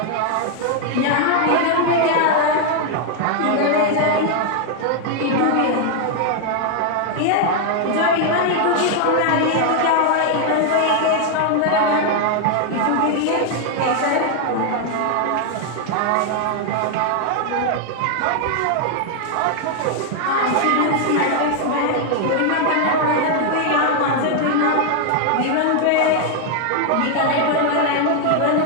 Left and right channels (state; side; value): different; both; correlation 0.00